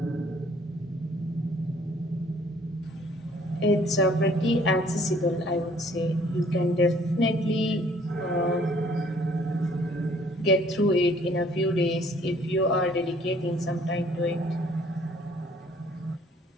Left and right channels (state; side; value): normal; both; correlation 0.59